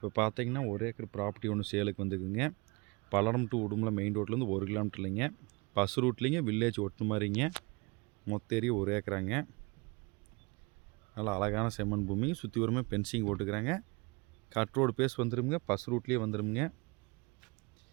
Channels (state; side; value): quieter; left; 27.7 dB